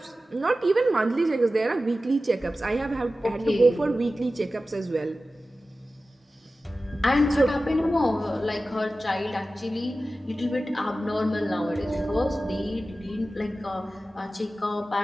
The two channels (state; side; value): normal; both; correlation 0.95